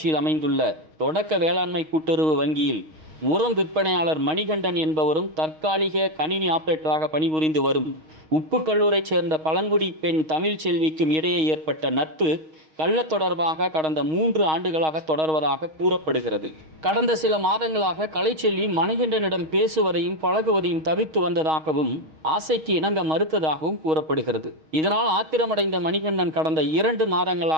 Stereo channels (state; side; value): late; left; 6.4 ms